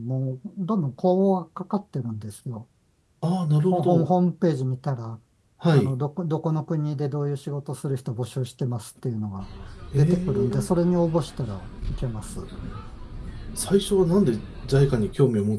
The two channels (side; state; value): both; identical; correlation 1.00